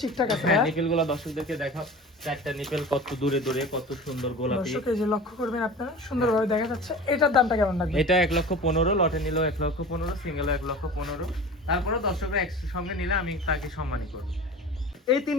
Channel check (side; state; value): both; normal; correlation 0.37